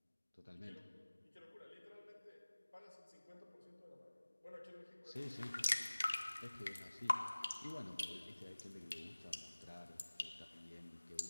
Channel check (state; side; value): inverted; both; correlation -1.00